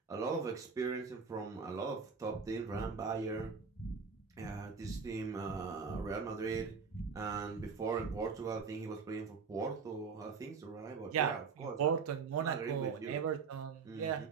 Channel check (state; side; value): quieter; left; 5.4 dB